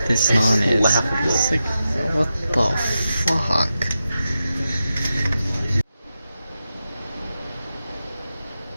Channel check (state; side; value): inverted; both; correlation -0.90